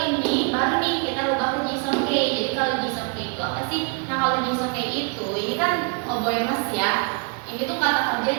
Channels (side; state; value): left; quieter; 35.7 dB